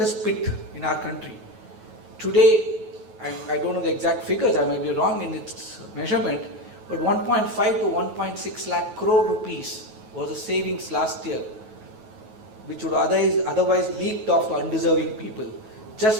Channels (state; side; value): late; left; 9.2 ms